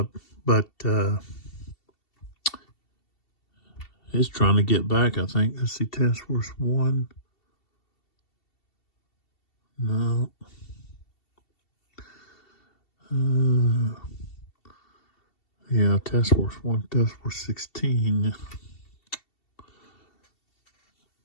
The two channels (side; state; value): right; late; 2.7 ms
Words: it's trying to get back, I think. Let's see, Task Force 1. No. Yeah, Task Force 1, Task Force 16.